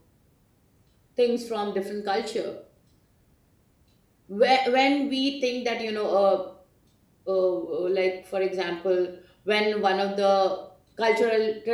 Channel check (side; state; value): both; identical; correlation 1.00